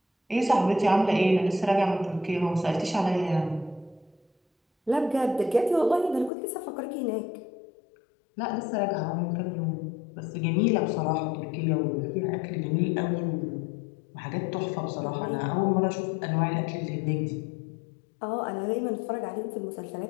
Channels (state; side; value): drops out; right; at 6.3 s